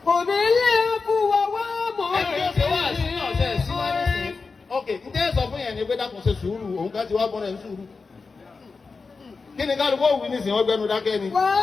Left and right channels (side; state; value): right; quieter; 4.4 dB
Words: Kóbi àfùwà wà mọ́ ok ǹjẹ́ sọ fún yẹn ni pé dákun ṣe sùúrù òun ká ti wá bọ́ra ẹ̀ ń sùúrù. kí ni kálukú òwú nísìnyí wọ́n gbẹnu dákẹ́ ni.